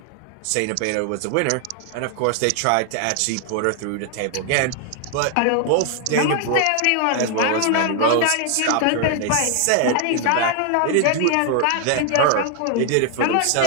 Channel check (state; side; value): different; both; correlation 0.00